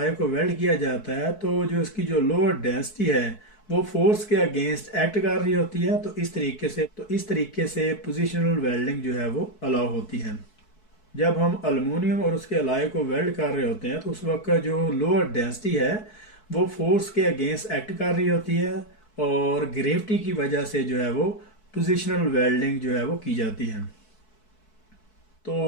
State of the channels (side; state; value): right; late; 4.6 ms